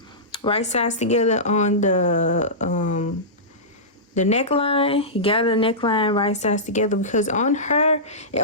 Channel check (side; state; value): both; normal; correlation -0.17